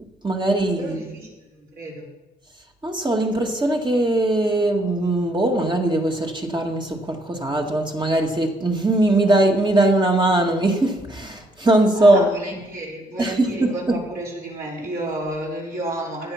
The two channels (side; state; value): both; normal; correlation 0.71